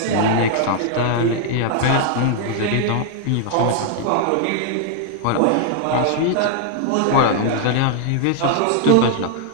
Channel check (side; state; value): both; different; correlation 0.00